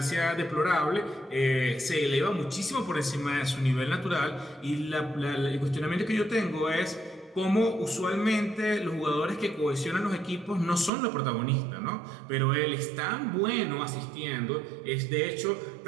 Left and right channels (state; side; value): drops out; left; at 10.9 s